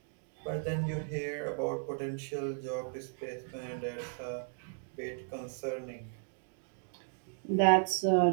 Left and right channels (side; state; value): left; silent; digital silence